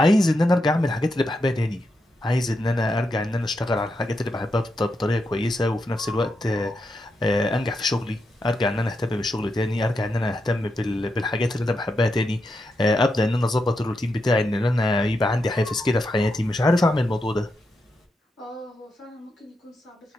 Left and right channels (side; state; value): both; normal; correlation 0.85